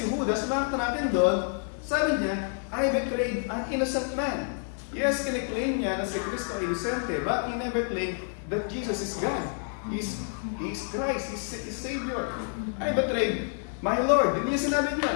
Judas, makita natin doon, sabi niya, I betrayed an innocent man. Yes, kiniklaim niya na si Kristo ay inosente, but he never claimed that Jesus is God. He is Christ, He is Savior. I betrayed my Lord. Hindi niya sinabi niya.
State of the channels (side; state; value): right; silent; 59 dB below the other